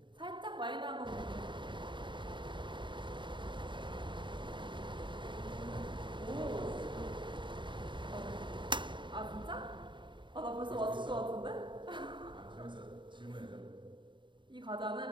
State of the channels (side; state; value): left; late; 0.23 ms